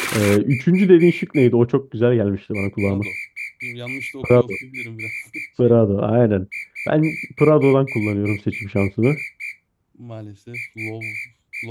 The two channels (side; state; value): both; identical; correlation 1.00